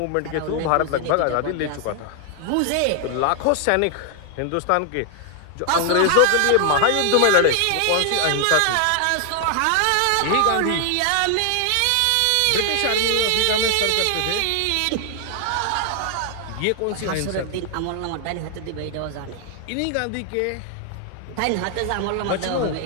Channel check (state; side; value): different; both; correlation 0.00